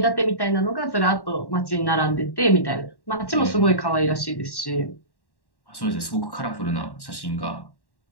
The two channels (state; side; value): late; right; 1.1 ms